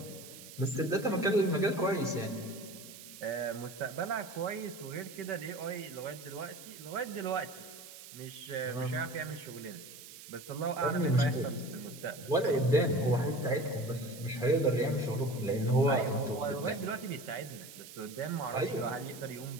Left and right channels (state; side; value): noise; right; hiss, 15 dB below the sound